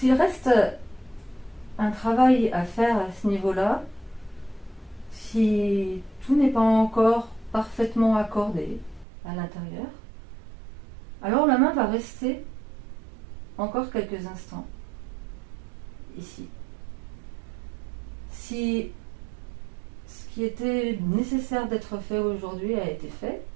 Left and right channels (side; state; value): left; drops out; at 9.1 s